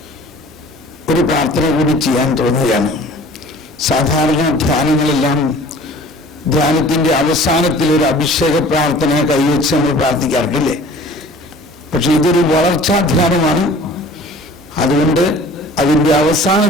ഒരു പ്രാർത്ഥന കൂടി ചെയ്യാൻ തോന്നുകയാണ്. സാധാരണ ധ്യാനങ്ങളെല്ലാം ധ്യാനത്തിൻ്റെ അവസാനത്തിൽ ഒരു അഭിഷേക പ്രാർത്ഥന കൈവച്ച് നമ്മൾ പ്രാർത്ഥിക്കാറില്ലേ? പക്ഷെ ഇതൊരു വളർച്ചാ ധ്യാനമാണ്. അതുകൊണ്ട് അതിൻ്റെ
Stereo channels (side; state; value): both; normal; correlation 0.47